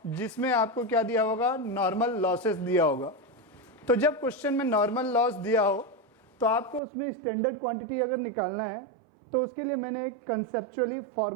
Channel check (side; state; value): left; drops out; at 6.8 s